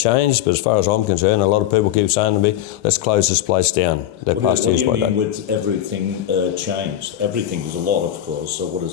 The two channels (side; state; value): right; quieter; 12.1 dB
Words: but as far as I'm concerned, a lot of people keep saying to me, let's close this place down. What do you mean with everything changed? Everything is a lot, of course, so what